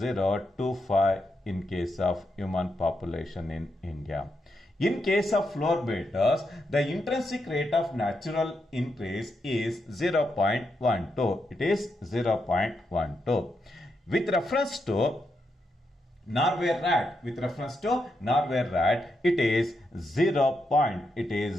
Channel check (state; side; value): normal; both; correlation 0.83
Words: in case of human population in India. In case of floor beetles, the intrinsic rate of natural increase is 0.12. It is 0.12. With reference to Norway rat, it is